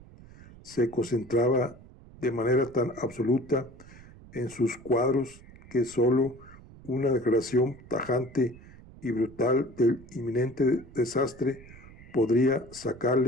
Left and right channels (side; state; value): right; noise; rumble, 20 dB below the sound